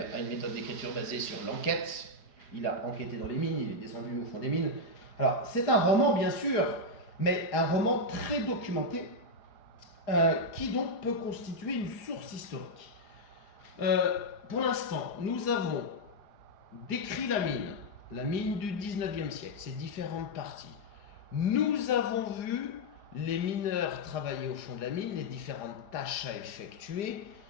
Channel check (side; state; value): right; late; 4.9 ms